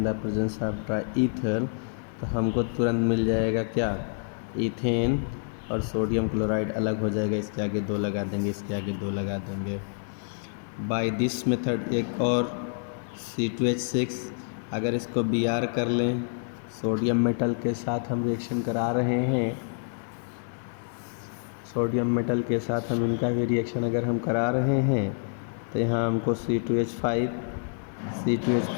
the presence of dry ether तो हमको तुरंत मिल जाएगा क्या? ईथेन और सोडियम क्लोराइड अलग हो जाएगा, इसके आगे 2 लगा देंगे, इसके आगे 2 लगा देंगे। बाय दिस मेथड एक और C2H6 अगर इसको Br कर लें, सोडियम मेटल के साथ हम रिएक्शन करा रहे हैं, सोडियम मेटल के साथ हम इनका भी रिएक्शन अगर हम करा रहे हैं तो यहाँ हमको C2H5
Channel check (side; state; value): right; silent; 60 dB below the other